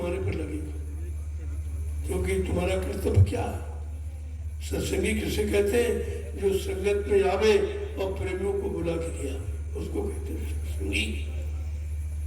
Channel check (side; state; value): both; identical; correlation 1.00